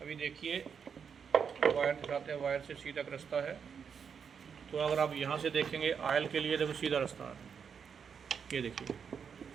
अभी देखिए वायर दिखाते हैं, वायर से सीधा रास्ता है। तो अगर आप यहाँ से देखेंगे ऑयल के लिए, देखो सीधा रास्ता है। ये देखिए,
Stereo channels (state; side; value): quieter; left; 6.8 dB